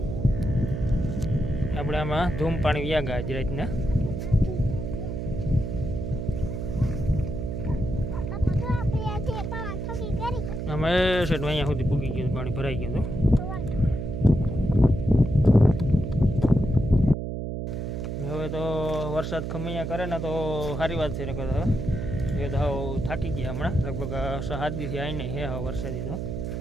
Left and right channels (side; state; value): right; noise; hum, 4 dB below the sound